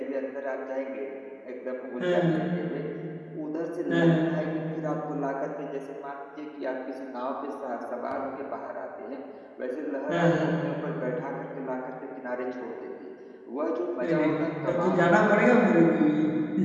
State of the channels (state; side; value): identical; both; correlation 1.00